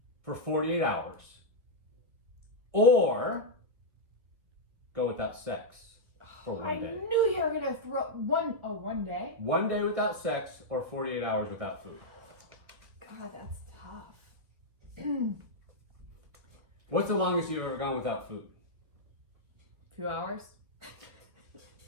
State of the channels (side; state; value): left; late; 1.4 ms